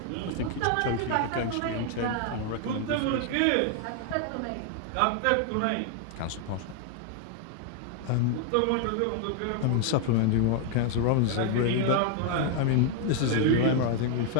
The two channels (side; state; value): both; different; correlation 0.00